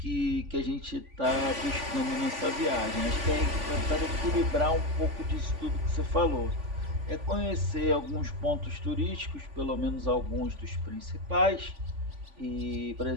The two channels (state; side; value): late; left; 3.5 ms